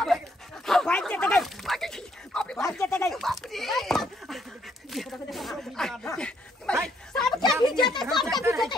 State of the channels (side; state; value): both; normal; correlation 0.70